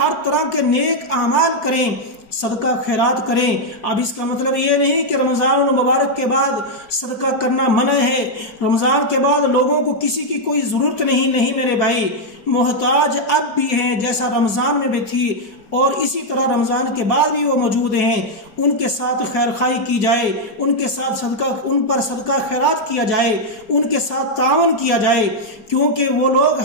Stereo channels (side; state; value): right; late; 4.6 ms